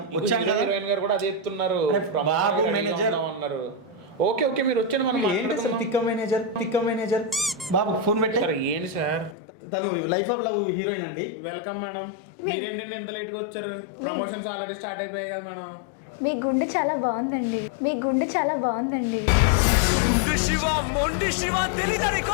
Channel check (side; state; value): right; drops out; at 9.3 s